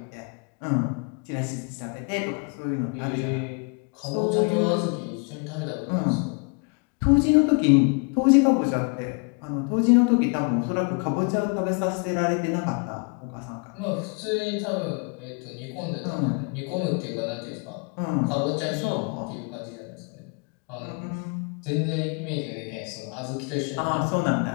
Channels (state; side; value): quieter; right; 36.3 dB